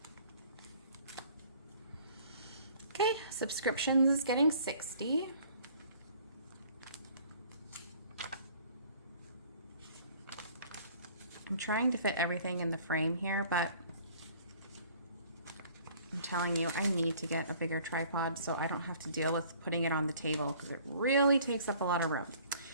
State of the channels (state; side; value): inverted; both; correlation -0.54